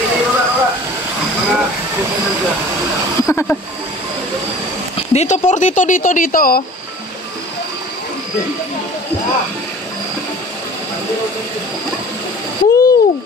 Dito por dito oh. Woo!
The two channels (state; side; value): normal; both; correlation 0.45